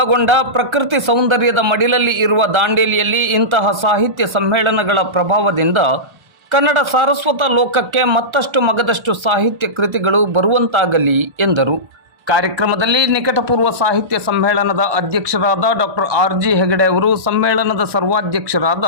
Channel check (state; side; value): late; left; 1.3 ms